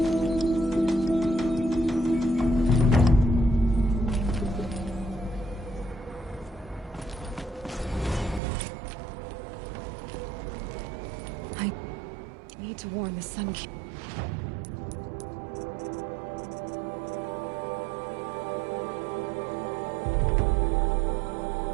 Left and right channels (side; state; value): left; drops out; at 8.4 s